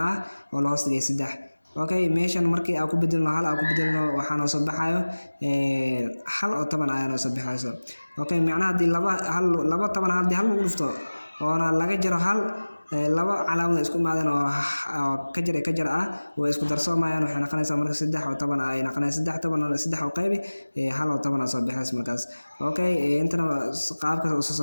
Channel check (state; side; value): inverted; both; correlation -1.00